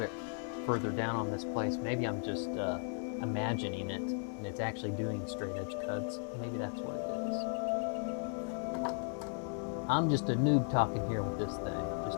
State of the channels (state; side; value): silent; right; 54 dB below the other